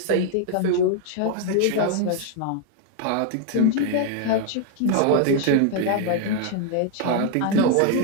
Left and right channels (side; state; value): both; different; correlation 0.00